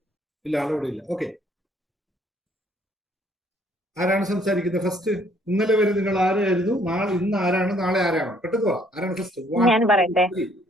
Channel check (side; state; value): both; normal; correlation 0.63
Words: ഇല്ല, ആളോടെ ഇല്ല. ഓക്കെ, ആരാണ് സംസാരിക്കുന്നത് ഫസ്റ്റ്? ഇന്നലെ വരെ നിങ്ങൾ ആരായിരുന്നു? ഇന്ന് ആരാണ്? നാളെ ആരാണ്? പെട്ടെന്ന് ആരാണ് ഫസ്റ്റ്?